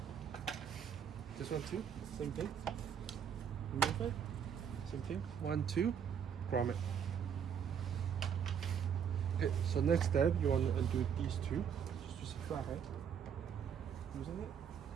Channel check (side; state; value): left; quieter; 7.9 dB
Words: This one too, same thing. Remove it, same thing. 1, 2, grommet. Okay, so next step, you want to undo these two. Just use a flathead. Using it.